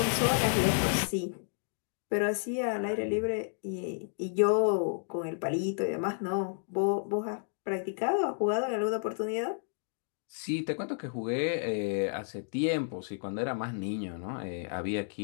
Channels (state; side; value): silent; right; digital silence